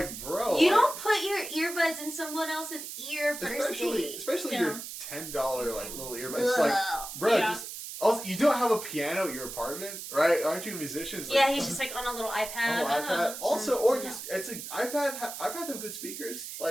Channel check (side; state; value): right; noise; hiss, 9 dB below the sound